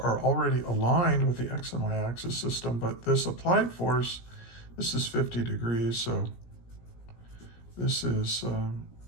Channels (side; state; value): right; late; 17 ms